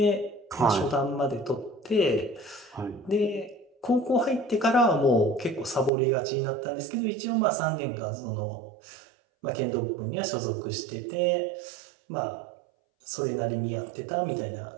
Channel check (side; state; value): left; drops out; at 5.9 s